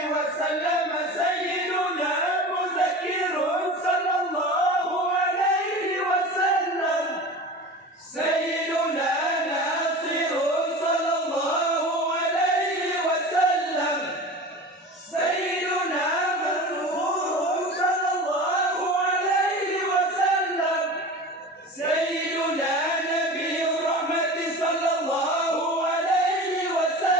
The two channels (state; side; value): normal; both; correlation 0.34